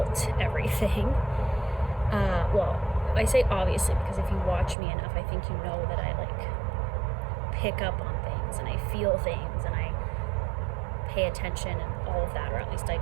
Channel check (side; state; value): left; drops out; at 4.8 s